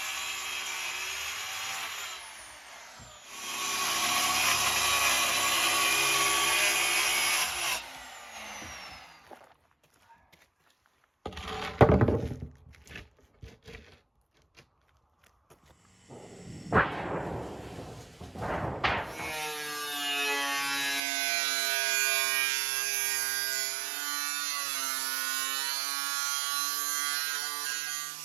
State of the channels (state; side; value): drops out; left; at 21.0 s